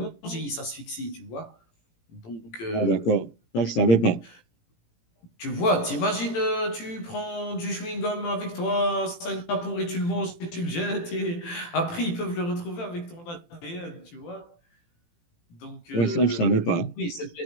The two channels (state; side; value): late; right; 18 ms